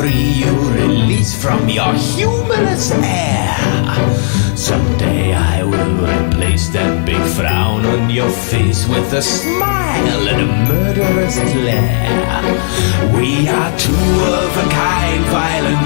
you, release from your humorous air. Someday I will replace that big frown on your face with a smile and a murderous glare. We are two of a kind,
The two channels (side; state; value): right; silent; digital silence